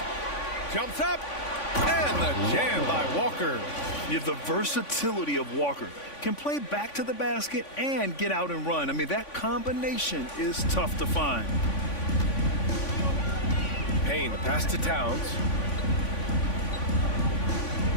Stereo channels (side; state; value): right; late; 3.5 ms